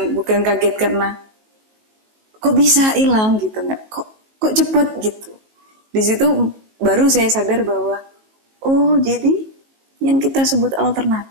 kaget karena kok bisa hilang gitu, nggak, kok cepet gitu. Di situ baru saya sadar bahwa oh jadi yang kita sebut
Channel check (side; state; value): left; late; 19 ms